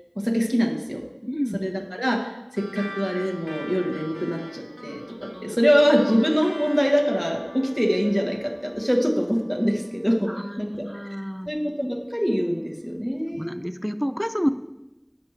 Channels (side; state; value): both; identical; correlation 1.00